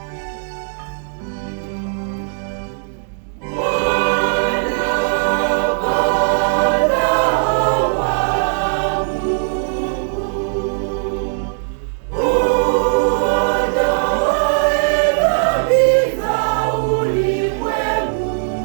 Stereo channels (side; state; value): left; silent; 67 dB below the other